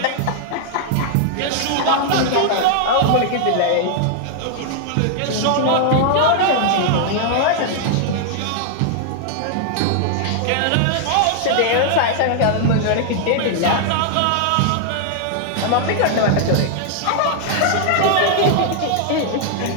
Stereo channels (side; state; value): both; different; correlation 0.00